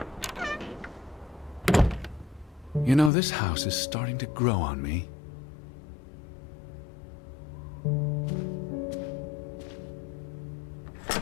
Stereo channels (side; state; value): right; drops out; at 3.1 s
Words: You know, this house is starting to grow on me.